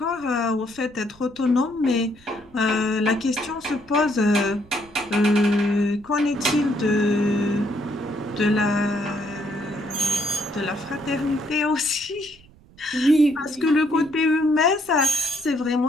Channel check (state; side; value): noise; right; rumble, 25 dB below the sound